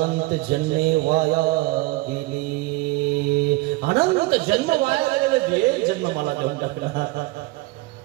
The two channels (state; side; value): quieter; left; 20.9 dB